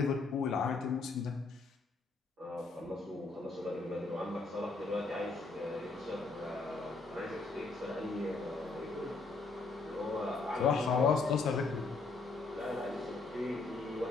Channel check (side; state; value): right; quieter; 3.8 dB